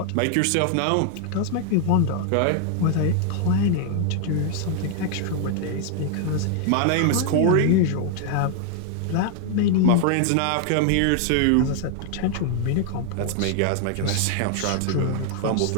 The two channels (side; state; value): both; different; correlation 0.00